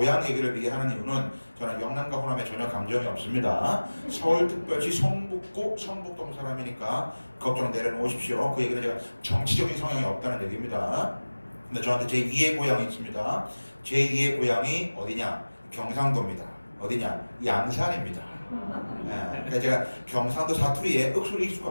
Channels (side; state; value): both; inverted; correlation -1.00